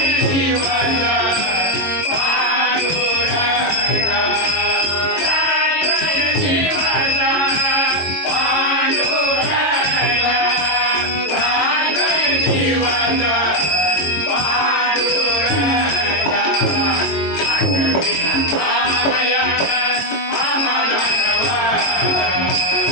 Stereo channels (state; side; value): late; right; 22 ms